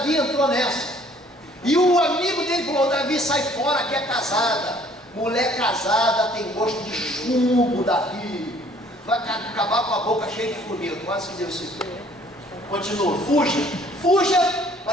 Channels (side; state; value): both; normal; correlation 0.58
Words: entrou nessa. E o amigo dele falou: Davi, sai fora que é casada. Mulher casada tem gosto de chumbo, Davi. Vai acabar com a boca cheia de formiga. Quase que deu isso. Continua. Fuja. Fuja.